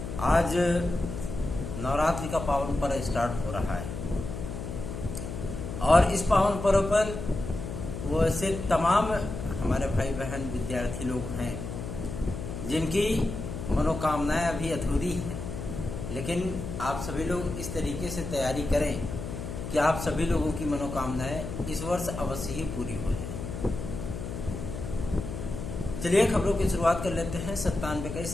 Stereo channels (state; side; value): noise; left; hum, 7 dB below the sound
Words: आज नवरात्रि का पावन पर्व स्टार्ट हो रहा है और इस पावन पर्व पर वो ऐसे तमाम हमारे भाई बहन विद्यार्थी लोग हैं जिनकी मनोकामनाएं अभी अधूरी हैं, लेकिन आप सभी लोग इस तरीके से तैयारी करें कि आप सभी लोगों की मनोकामनाएं इस वर्ष अवश्य ही पूरी हो जाए। चलिए खबरों की शुरुआत कर लेते हैं।